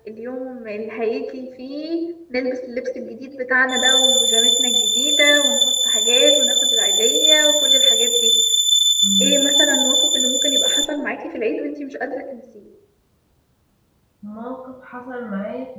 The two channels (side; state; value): both; identical; correlation 1.00